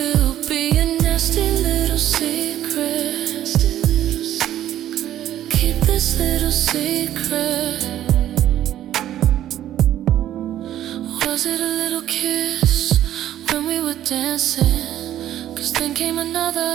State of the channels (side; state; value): left; quieter; 12.1 dB